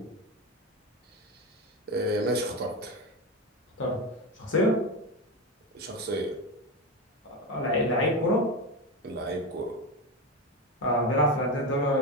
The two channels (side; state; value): both; normal; correlation 0.17